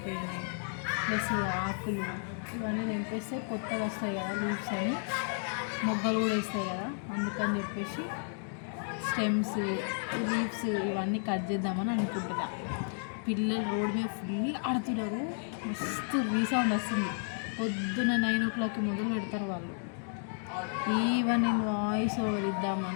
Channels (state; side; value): silent; right; 56 dB below the other